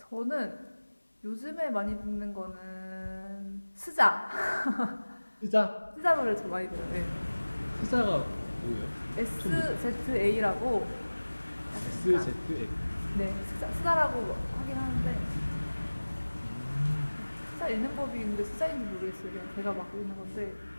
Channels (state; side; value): inverted; both; correlation -1.00